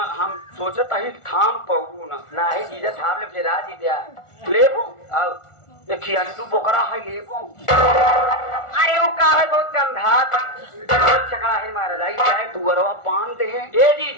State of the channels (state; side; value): late; right; 1.4 ms